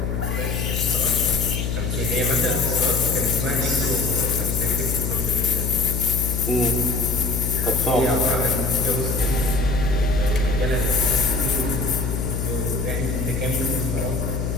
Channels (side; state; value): left; noise; hum, 1 dB below the sound